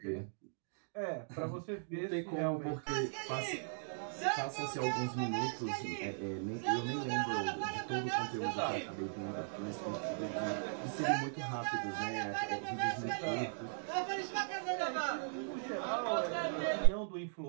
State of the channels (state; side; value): silent; left; digital silence